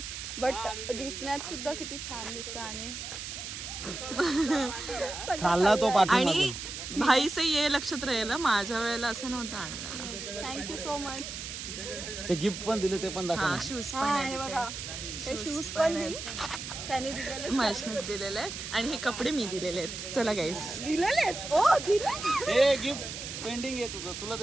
बट दिसण्यात सुद्धा किती छान दिसतं. आणि खाल्ला तो पाठवून. आणि भाई से ये लक्षात राहील माझ्या वेळेला असं नव्हतं आणलं. Thank you so much. ते गिफ्ट पण दिले ते पण हा दाखव. शूज पण हा आहे. हे बघा हे शूज पण मी त्याने दिलेले महेशने दिलेले आहेत आणि हे कपडे मी दिलेले आहेत. चला गाईस. दिलेले आहेत. ओ दिले. ए गिफ्ट पेंडिंग आहे तुझं. तुला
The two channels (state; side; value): noise; right; hiss, 8 dB below the sound